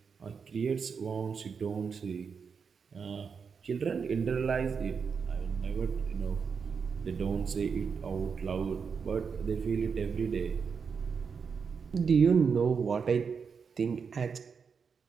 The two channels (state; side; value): quieter; left; 5.9 dB